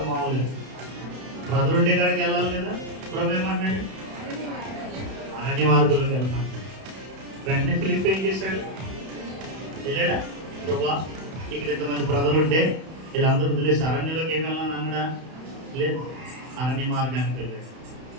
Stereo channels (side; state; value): left; late; 31 ms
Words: మామూలుగా ప్రజలుండే కాడికి వెళ్ళాలి కదా. ప్రభు ఏమంటున్నాడు? అరణ్య మార్గంలోకి వెళ్తాను. వెంటనే ఫిలిప్ ఏం చేశాడు? వెళ్ళాడా? ప్రభా ఇక్కడ ఇంతమంది ప్రజలుంటే వీళ్ళందరూ వదిలేసి అరణ్యంలోకి ఏమి వెళ్ళాలని అన్నాడా? లేదు, అరణ్య మార్గానికి వెళ్ళాడు.